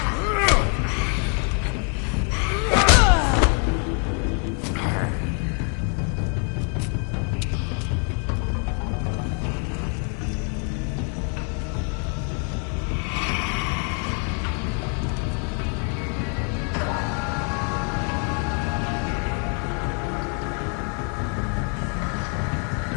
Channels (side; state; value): right; quieter; 37.8 dB